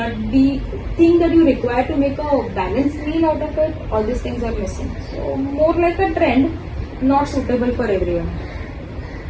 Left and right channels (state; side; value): identical; both; correlation 1.00